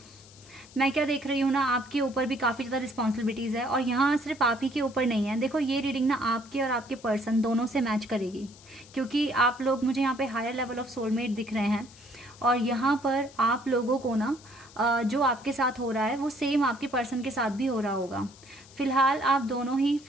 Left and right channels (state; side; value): noise; left; hiss, 23 dB below the sound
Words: मैं क्या देख रही हूँ ना, आपके ऊपर भी काफ़ी ज़्यादा रिस्पॉन्सिबिलिटीज़ है और यहाँ सिर्फ आप ही के ऊपर नहीं है। देखो, ये रीडिंग ना आपके और आपके पर्सन दोनों से मैच करेगी, क्योंकि आप लोग, मुझे यहाँ पे हायर लेवल ऑफ सोलमेट दिख रहे हैं और यहाँ पर आप लोगों को ना जो आपके साथ हो रहा है वो सेम आपके पर्सन के साथ भी हो रहा होगा। फिलहाल आप दोनों ही